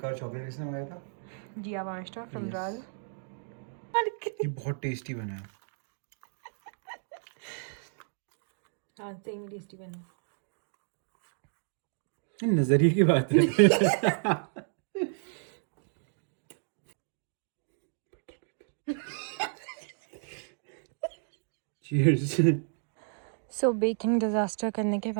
चॉकलेट किसने मंगाया था? जिया मास्टर फ्रॉम Yes. राज। ये बहुत टेस्टी बना है। हाँ सही में टेस्टी बना। ये नजरिए की बात है। Cheers. सो बेकिंग डिज़ास्टर करने के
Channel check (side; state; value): left; silent; digital silence